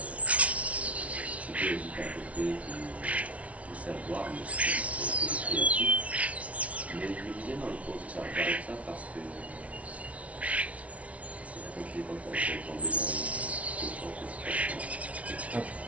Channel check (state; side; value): late; left; 0.065 ms